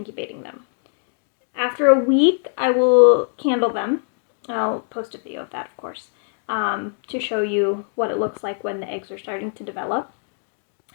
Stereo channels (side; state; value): right; silent; 64 dB below the other